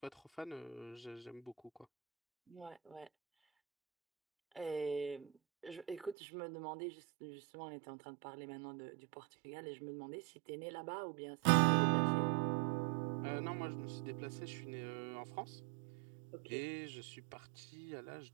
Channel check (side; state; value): left; drops out; at 6.2 s